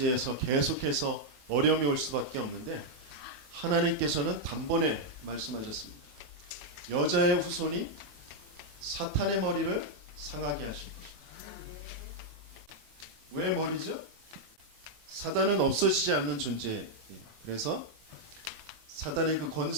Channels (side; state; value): left; late; 18 ms